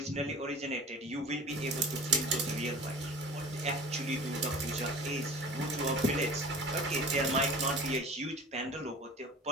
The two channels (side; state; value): both; normal; correlation 0.40